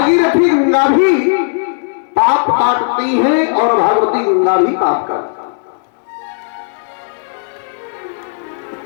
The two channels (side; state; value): right; silent; 70 dB below the other